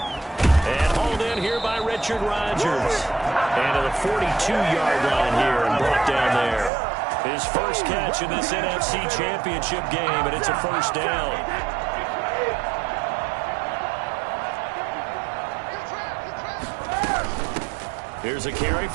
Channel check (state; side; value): drops out; left; at 6.7 s